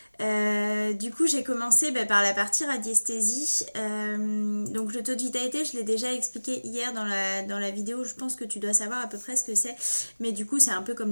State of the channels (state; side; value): inverted; both; correlation -1.00